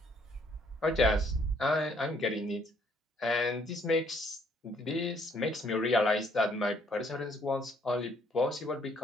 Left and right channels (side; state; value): both; normal; correlation 0.66